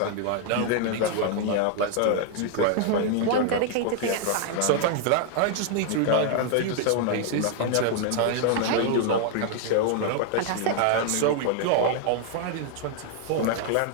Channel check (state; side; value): different; both; correlation 0.00